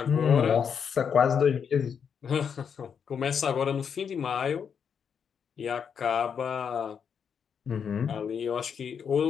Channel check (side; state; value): right; quieter; 7.1 dB